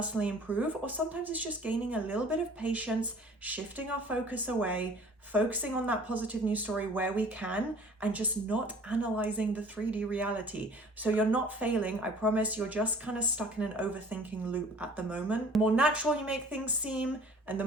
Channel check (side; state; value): both; normal; correlation 0.49